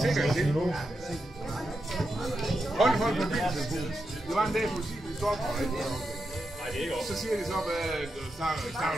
sikkerhedssel. Hold på mobiltelefonen. Det var en dag, politiet ville stoppe mig. Så siger de så, at snakker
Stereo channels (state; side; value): normal; both; correlation 0.87